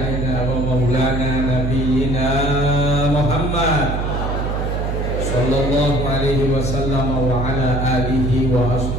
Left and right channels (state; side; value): noise; right; hum, 1 dB below the sound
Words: wa maulana nabiyyina Muhammad sallallahu alaihi wasallam wa ala alihi wa